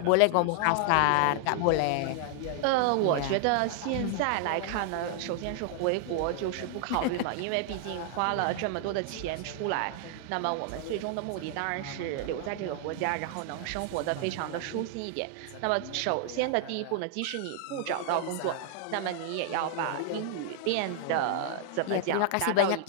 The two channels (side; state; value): both; different; correlation 0.00